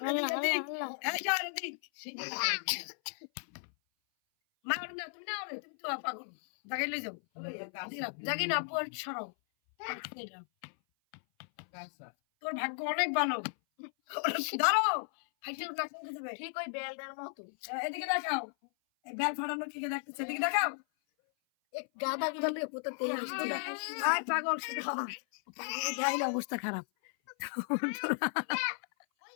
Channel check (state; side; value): silent; right; 54 dB below the other